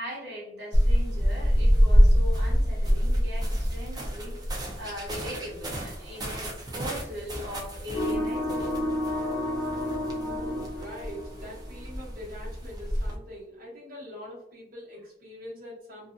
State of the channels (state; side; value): normal; both; correlation 0.92